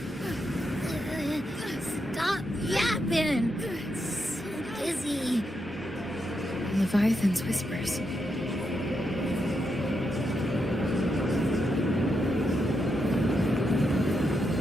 open. So dizzy. Leviathan's whispers.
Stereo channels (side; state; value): both; normal; correlation 0.83